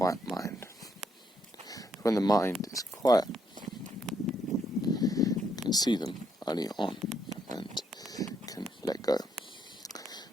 mind. When the mind is quiet, you can see them early on and can let go.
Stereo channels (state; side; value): normal; both; correlation 0.74